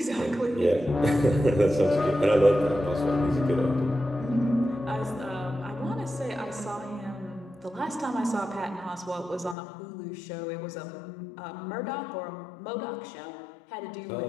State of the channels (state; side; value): drops out; right; at 9.6 s